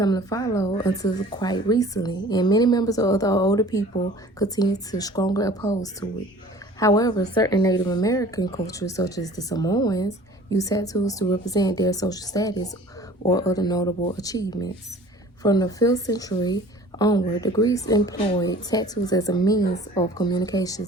to follow until quite recently, and many members of the older people continue to strongly oppose to it. However, certain Native American cultures, such as the Samoans, use tattoos to represent their social status or other notable achievements. From the 5th century onward, the Greeks employed tattoos as a means of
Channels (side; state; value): both; normal; correlation 0.47